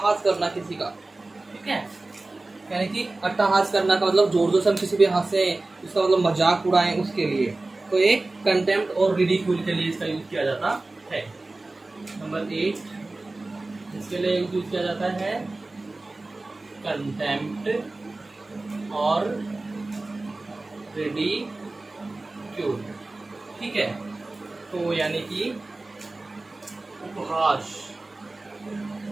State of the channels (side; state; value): left; quieter; 3.1 dB